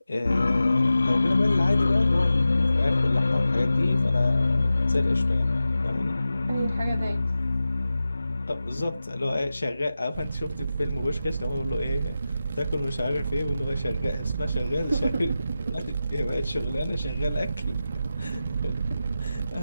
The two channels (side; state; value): both; inverted; correlation -0.93